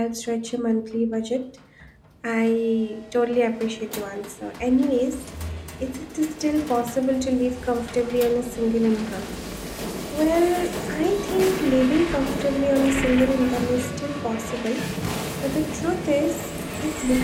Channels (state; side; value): identical; both; correlation 1.00